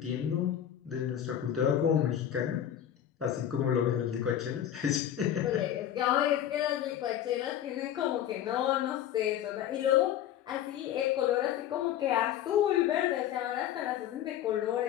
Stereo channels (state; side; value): quieter; right; 10.7 dB